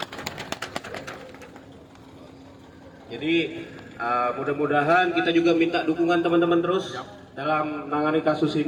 Jadi mudah-mudahan kita juga minta dukungan teman-teman terus dalam menangani kasus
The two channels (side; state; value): both; identical; correlation 1.00